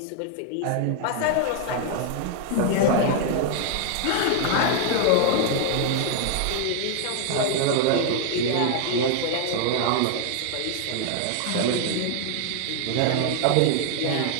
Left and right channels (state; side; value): different; both; correlation 0.00